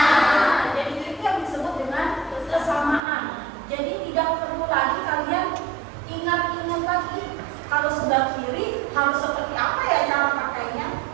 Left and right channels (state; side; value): drops out; left; at 3.0 s